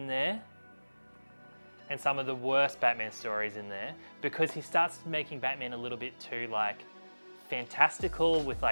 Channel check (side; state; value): both; inverted; correlation -1.00